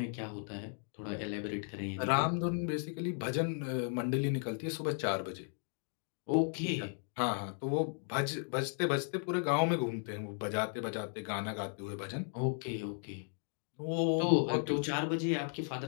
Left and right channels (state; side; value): silent; right; 54 dB below the other